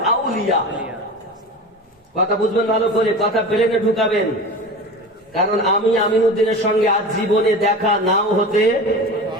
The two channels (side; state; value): both; normal; correlation 0.32